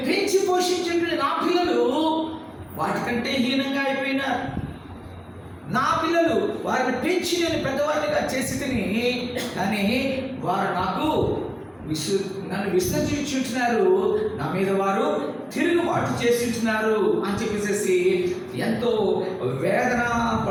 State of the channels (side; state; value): both; identical; correlation 1.00